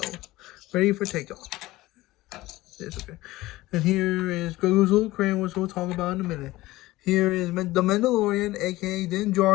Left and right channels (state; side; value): quieter; right; 18.1 dB